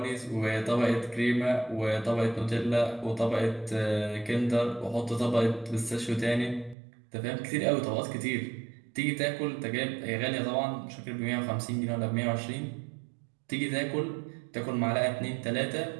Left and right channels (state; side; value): drops out; left; at 6.8 s